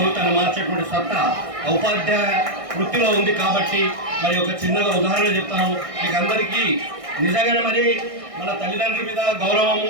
మార్చేటువంటి సత్తా ఉపాధ్యాయ వృత్తిలో ఉంది కాబట్టి మరి ఒక చిన్నగా ఉదాహరణ చెప్తాను మీకు అందరికీ। నిజంగానే మరి మన తల్లిదండ్రుల మీద గౌరవము,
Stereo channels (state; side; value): late; left; 1.6 ms